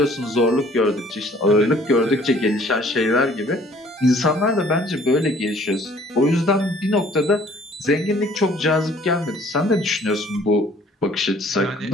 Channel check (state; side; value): normal; both; correlation 0.56